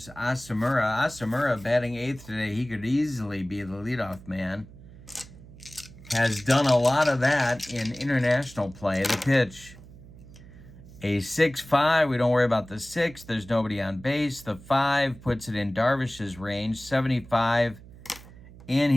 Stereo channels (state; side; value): noise; right; hum, 19 dB below the sound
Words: Asamura. Asamura batting 8th today. He could easily be the leadoff man. Has done a lot of that in international play. The pitch. A 6-5. We don't worry about the 6. There's nobody on base. The 5 puts it in Darvish's range. 75 in